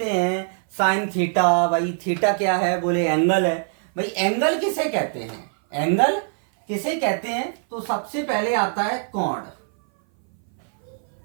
हैं साइन थीटा, भाई थीटा क्या है? बोले एंगल है। भाई एंगल किसे कहते हैं? एंगल किसे कहते हैं? तो सबसे पहले आता है कोण।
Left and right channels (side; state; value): left; silent; 59 dB below the other